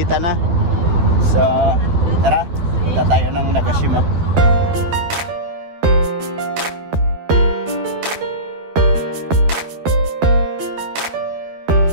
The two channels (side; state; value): left; late; 12 ms